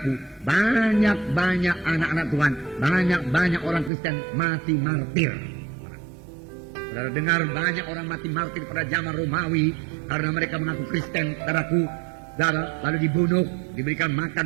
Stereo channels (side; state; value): left; drops out; at 3.9 s